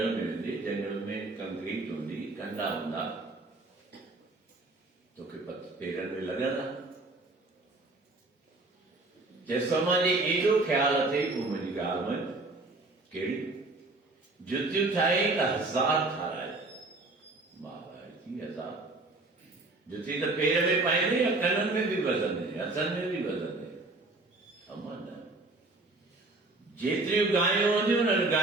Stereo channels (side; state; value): left; quieter; 3.1 dB